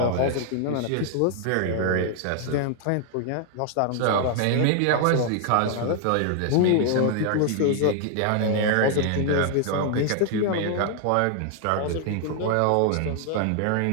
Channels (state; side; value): different; both; correlation 0.00